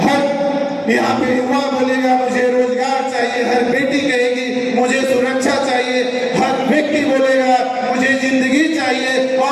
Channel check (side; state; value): both; identical; correlation 1.00